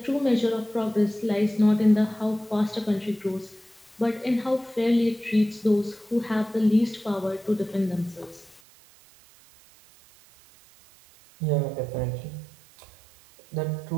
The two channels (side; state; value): left; drops out; at 8.6 s